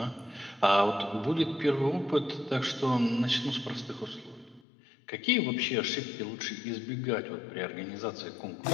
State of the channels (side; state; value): right; drops out; at 4.6 s